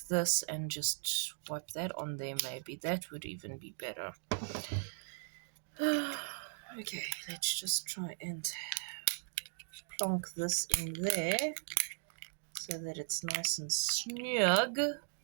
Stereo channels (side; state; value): left; silent; 53 dB below the other